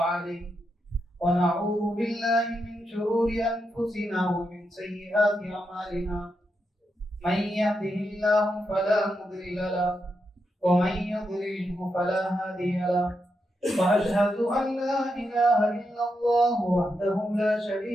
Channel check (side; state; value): both; normal; correlation 0.84